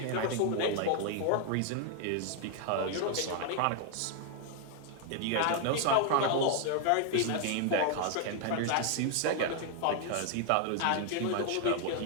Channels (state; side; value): different; both; correlation 0.00